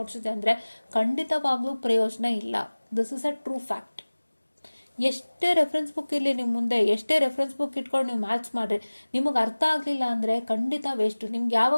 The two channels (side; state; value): both; inverted; correlation -1.00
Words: ಇದೆ ಅಂದರೆ ಖಂಡಿತವಾಗ್ಲೂ ಪ್ರಯೋಜನ ಇಲ್ಲ. This is a true fact. ಎಷ್ಟೇ ರೆಫರೆನ್ಸ್ ಬುಕ್ ಇರಲಿ ನಿಮ್ಮ ಮುಂದೆ, ಎಷ್ಟೇ ರೆಫರೆನ್ಸ್ ಬುಕ್ ಇಟ್ಕೊಂಡು ನೀವು ಮ್ಯಾಥ್ಸ್ ಮಾಡಿರಿ, ನಿಮಗೆ ಅರ್ಥ ಆಗಲಿಲ್ಲ ಅಂದರೆ ಖಂಡಿತ ವೇಸ್ಟು. ನಿಮ್ಗೆ